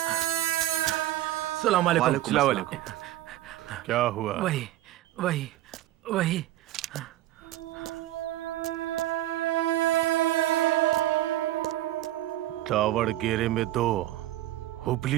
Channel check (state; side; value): quieter; left; 14.7 dB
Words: सलाम अलैकुम। सलाम अलैकुम। क्या हुआ? वही दावड़गेरे में 2,